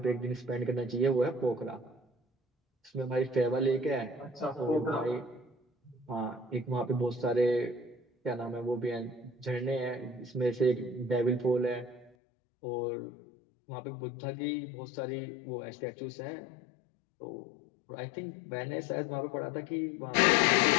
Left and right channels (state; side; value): drops out; right; at 12.1 s